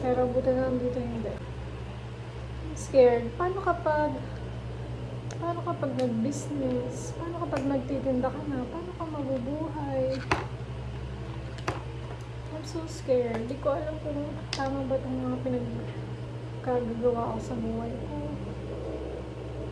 buti na lang dito hindi. I'm scared. Paano kapag nag-business? Paano kapag nagtitinda ka na? Paano ka mabubuhay? I'm so scared. Di ko alam kung tama ba itong mga pinagkagagawa ko sa buhay ko.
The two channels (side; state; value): both; identical; correlation 1.00